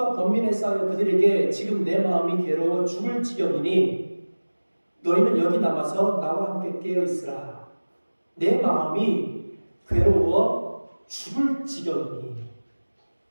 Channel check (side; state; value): both; inverted; correlation -1.00